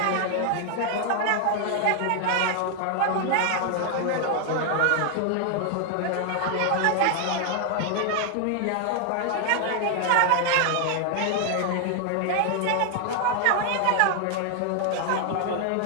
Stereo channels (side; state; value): both; different; correlation 0.00